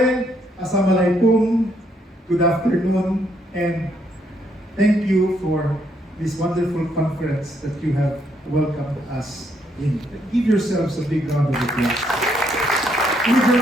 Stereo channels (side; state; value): both; normal; correlation 0.73